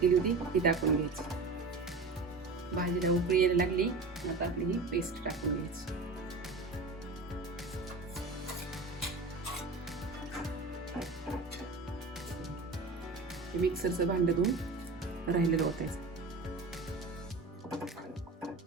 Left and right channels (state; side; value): quieter; left; 3.7 dB